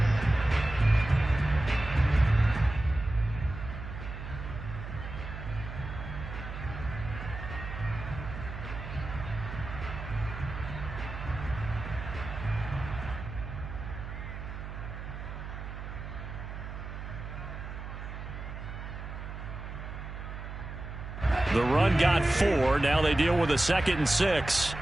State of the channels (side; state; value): right; noise; hum, 9 dB below the sound